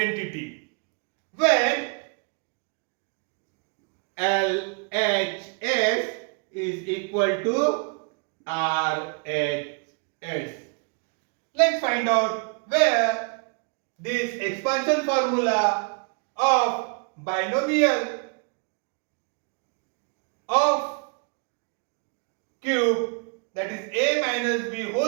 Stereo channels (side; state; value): left; quieter; 36.0 dB